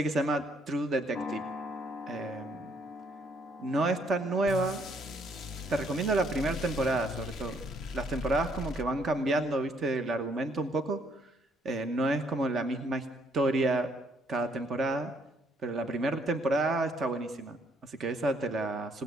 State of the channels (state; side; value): normal; both; correlation 0.68